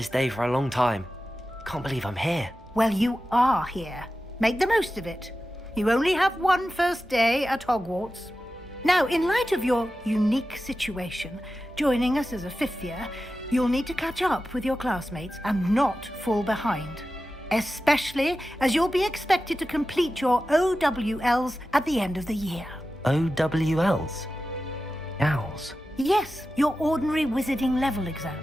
day for a long time. Can't believe I'm here. Well, you are here. Make the most of it. You only have one first day at Hogwarts. Now, in light of your unique situation, joining us as a 5th year, you'll need to catch up with your classmates and not fall behind. Especially as you'll be expected to complete your OWLs at the end of the year. OWLs? Owls? Yes, your ordinary wizarding level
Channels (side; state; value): both; normal; correlation 0.93